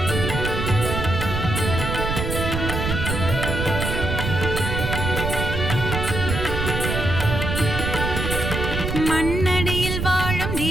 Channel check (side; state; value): right; noise; rumble, 3 dB below the sound